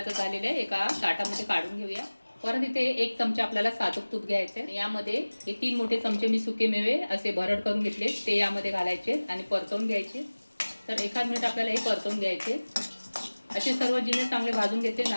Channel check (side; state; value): both; inverted; correlation -1.00